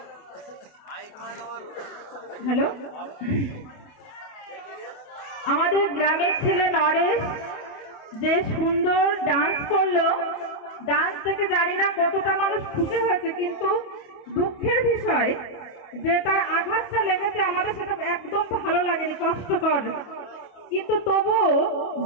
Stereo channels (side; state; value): right; late; 28 ms